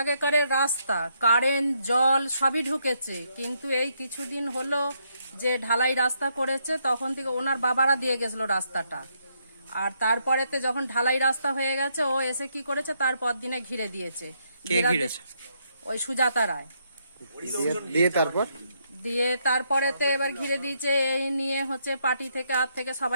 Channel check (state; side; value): inverted; both; correlation -0.76